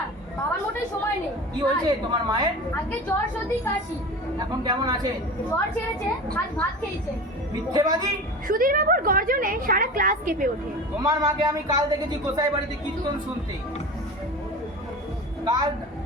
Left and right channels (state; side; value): normal; both; correlation 0.32